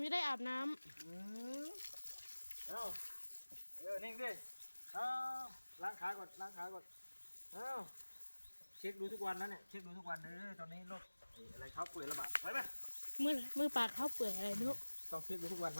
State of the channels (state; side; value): inverted; both; correlation -1.00